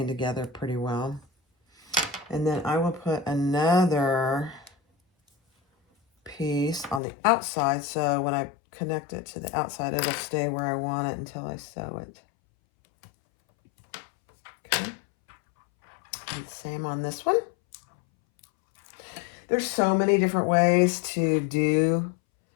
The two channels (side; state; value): right; drops out; at 7.0 s